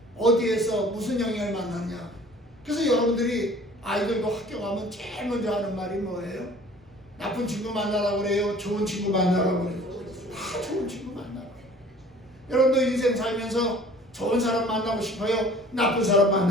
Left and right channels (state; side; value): noise; right; rumble, 29 dB below the sound